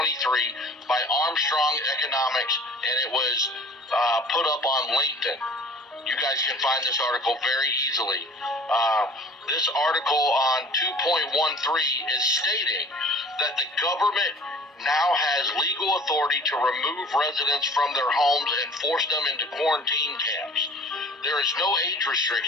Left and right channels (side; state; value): both; normal; correlation 0.48